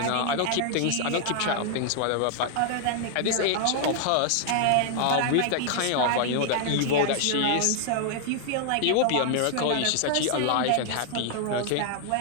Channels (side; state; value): both; different; correlation -0.01